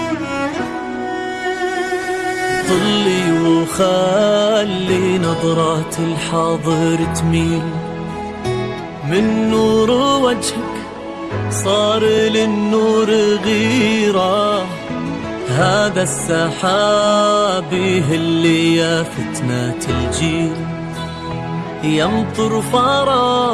طلي وخلي نظرات الحاضر تميل من نور وجهك صار للنور غيرة هذا السحاب اللي يا فتنة الجيل يمطر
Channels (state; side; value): identical; both; correlation 1.00